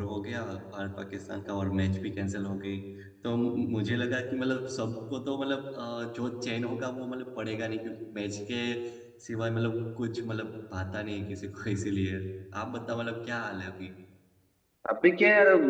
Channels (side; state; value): both; identical; correlation 1.00